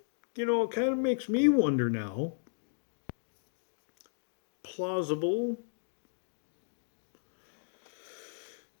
you know, it kind of makes me wonder now. Plausible.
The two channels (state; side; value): silent; right; digital silence